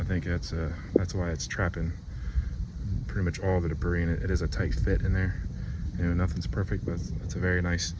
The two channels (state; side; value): identical; both; correlation 1.00